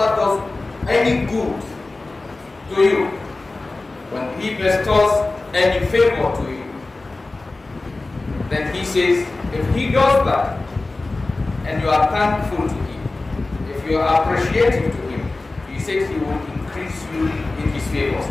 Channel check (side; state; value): right; quieter; 3.3 dB